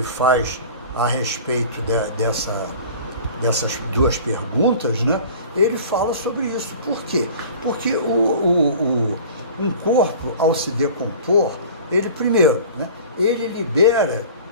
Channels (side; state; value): both; inverted; correlation -0.42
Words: faz a respeito dessas duas perguntas, né, ele fala sobre isso. Por quê? Porque um corpo, ao se decompor, ele primeiro, né, ele libera